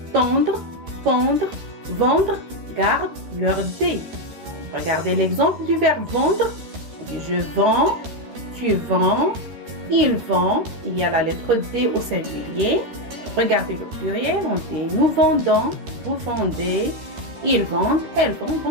tendre, pendre, vendre gardent leur D. Regardez l'exemple du verbe vendre. Je vends, tu vends, il vend. Il y a la lettre D au singulier. Regardez le pluriel. On dit nous vendons, vous vendez, ils vendent, elles vendent.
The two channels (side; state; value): left; late; 13 ms